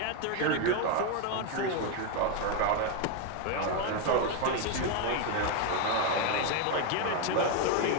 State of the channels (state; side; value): different; both; correlation 0.01